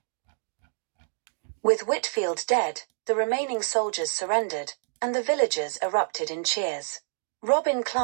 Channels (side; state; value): left; silent; digital silence